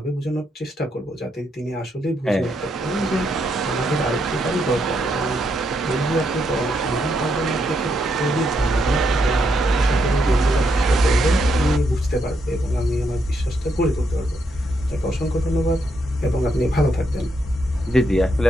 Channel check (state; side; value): normal; both; correlation 0.78